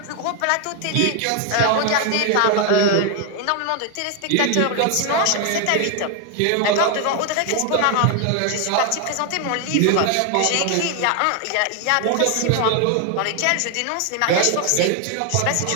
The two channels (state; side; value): different; both; correlation 0.01